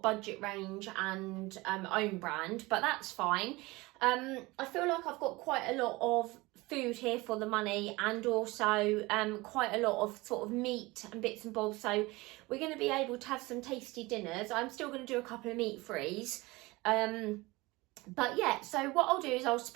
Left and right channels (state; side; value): quieter; left; 22.1 dB